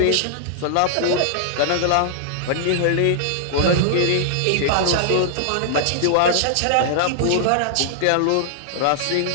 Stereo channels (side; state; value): both; different; correlation -0.01